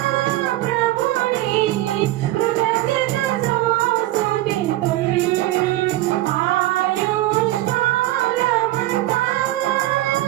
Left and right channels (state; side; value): quieter; left; 16.6 dB